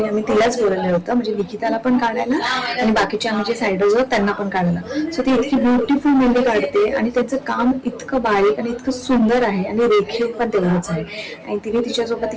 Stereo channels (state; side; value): identical; both; correlation 1.00